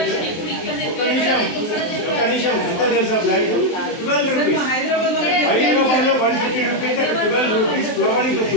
ఒక నిమిషం ఎంత తెలుసా ప్లాంట్? 12 rupees. హైదరాబాద్లో 150 rupees, 12 rupees ఫ్లవరింగ్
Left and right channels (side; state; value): right; late; 23 ms